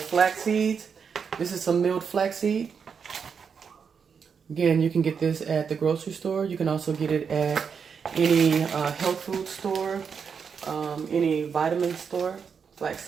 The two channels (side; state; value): left; quieter; 6.4 dB